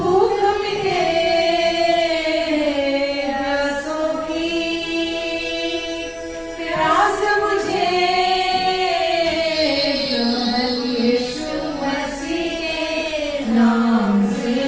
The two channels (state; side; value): identical; both; correlation 1.00